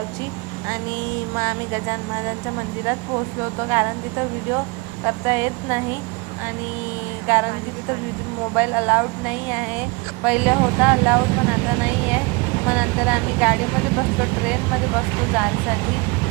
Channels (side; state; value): left; quieter; 27.0 dB